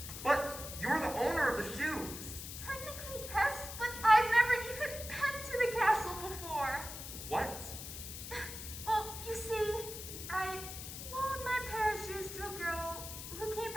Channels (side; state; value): left; noise; hiss, 9 dB below the sound